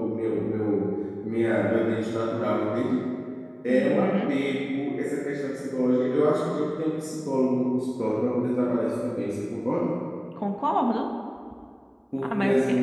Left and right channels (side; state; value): both; identical; correlation 1.00